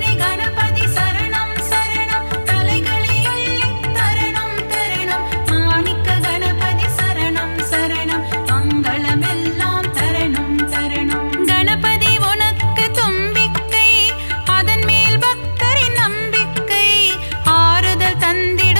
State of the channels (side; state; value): both; inverted; correlation -1.00